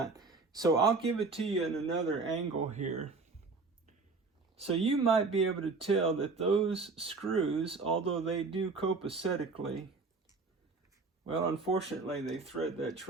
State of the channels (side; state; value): left; quieter; 4.1 dB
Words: So I'll give it to you in another angle here. So you might be able to tell that those screws, although they do copacetically, well, unfortunately, they thread that